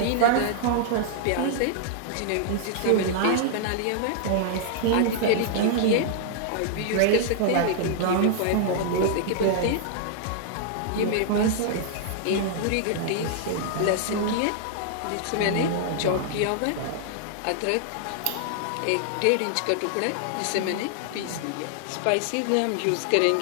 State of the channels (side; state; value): both; different; correlation -0.01